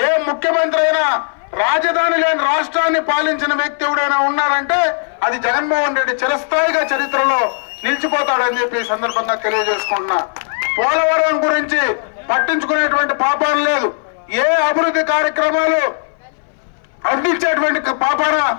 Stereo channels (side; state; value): right; silent; 60 dB below the other